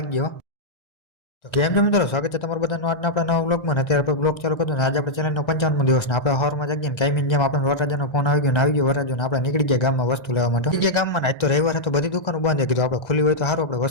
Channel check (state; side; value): late; right; 2.0 ms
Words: હો. તો કેમ છો મિત્રો? સ્વાગત છે તમારું બધાનું આજના આપણા નવા બ્લોગમાં. ને અત્યારે આપણે બ્લોગ ચાલુ કર્યો ને આજે આપણે ચેનલનો 55મો દિવસ ને આપણે સવારમાં જાગીએ ને કાયમીની જેમ આપણે વરરાજાનો ફોન આવી ગયો ને આવી ગયો વરરાજો ને આપણે નીકળી ગયા ગામમાં વસ્તુ લેવા માટે. નીકળી ગયા ગામમાં ને આજ તો રવિવાર હતો, બધી દુકાનો બંધ હતી. કીધું આપણે ખુલ્લી હોય તો સારું, આપણે